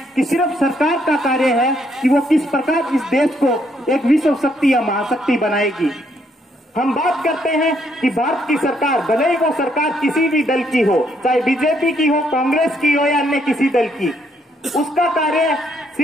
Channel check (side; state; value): both; normal; correlation 0.72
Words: कि सिर्फ सरकार का कार्य है कि वो किस प्रकार इस देश को एक विश्व शक्ति या महाशक्ति बनाएगी। हम बात करते हैं कि भारत की सरकार, भले ही वो सरकार किसी भी दल की हो, चाहे बीजेपी की हो, कांग्रेस की हो या अन्य किसी दल की, उसका कार्य